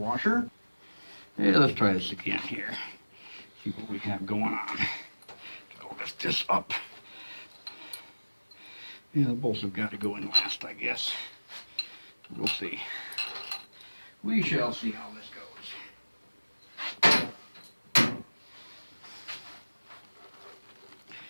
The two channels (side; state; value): both; inverted; correlation -1.00